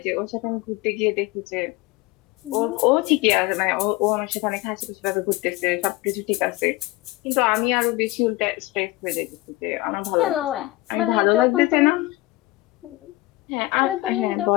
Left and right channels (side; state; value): right; quieter; 19.8 dB